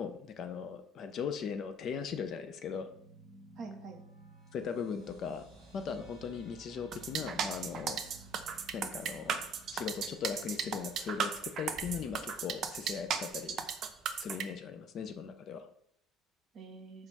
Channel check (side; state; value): both; normal; correlation 0.55